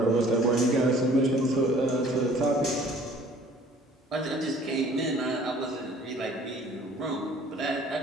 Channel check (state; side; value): normal; both; correlation 0.53